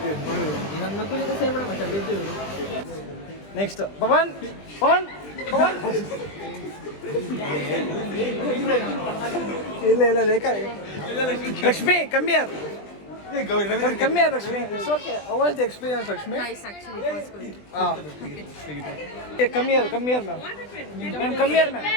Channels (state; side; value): late; right; 20 ms